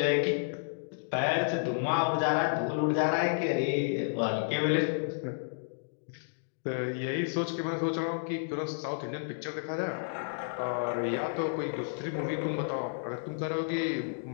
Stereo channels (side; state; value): right; silent; digital silence